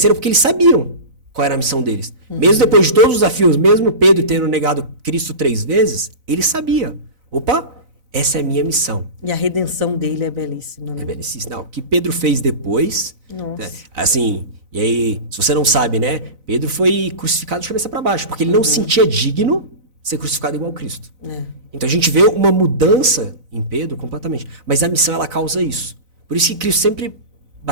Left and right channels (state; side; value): late; left; 4.0 ms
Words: porque eles sabiam qual era a missão deles. Mesmo depois de todos os desafios, mesmo Pedro tendo negado Cristo 3 vezes, ele sabia. Opa, essa é a minha missão. E a redenção dele é belíssima, né? É belíssimo. Não, o que Pedro fez depois... Nossa. Assim, e aí, se você não sabe, né? Pedro foi crucificado de cabeça para baixo, porque ele não se sentia digno de ser crucificado igual a Cristo. É. Então a gente vê uma mudança em Pedro completamente. Mas a missão, ela causa isso. Por isso que Cristo sempre